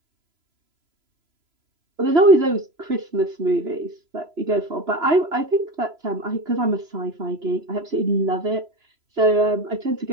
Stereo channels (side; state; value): left; late; 3.0 ms